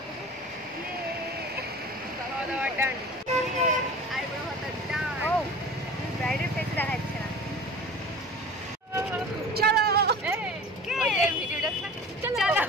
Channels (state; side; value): normal; both; correlation 0.39